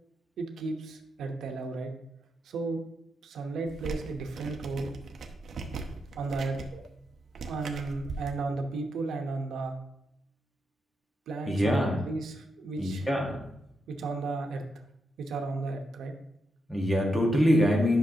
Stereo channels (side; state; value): both; normal; correlation 0.84